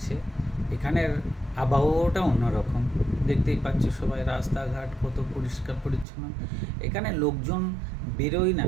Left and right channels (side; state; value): left; drops out; at 6.1 s